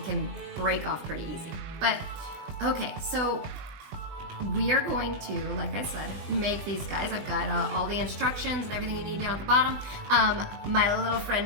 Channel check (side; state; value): left; late; 20 ms